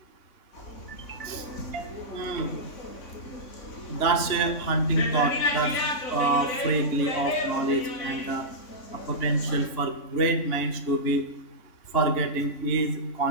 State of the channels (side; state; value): right; late; 3.6 ms